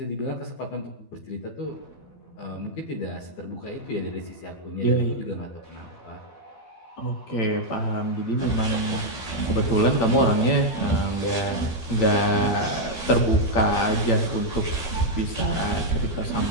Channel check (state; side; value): late; right; 12 ms